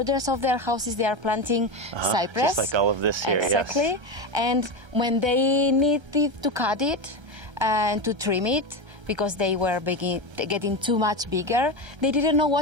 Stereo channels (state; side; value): late; left; 1.3 ms